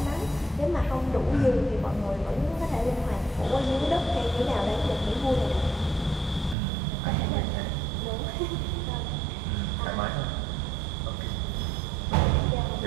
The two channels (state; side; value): drops out; left; at 6.6 s